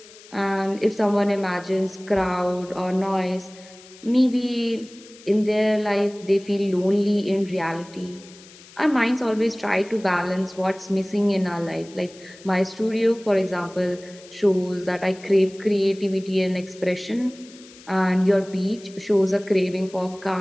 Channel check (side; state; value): left; noise; hiss, 22 dB below the sound